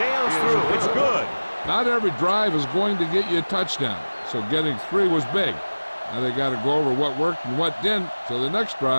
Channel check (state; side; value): inverted; both; correlation -1.00